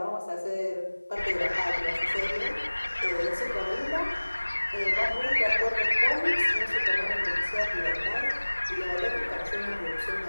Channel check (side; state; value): both; inverted; correlation -1.00